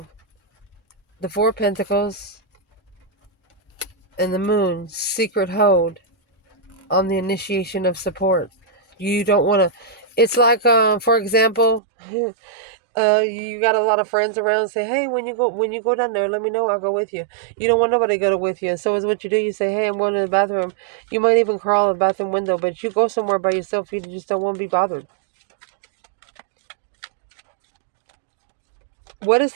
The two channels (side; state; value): left; drops out; at 11.8 s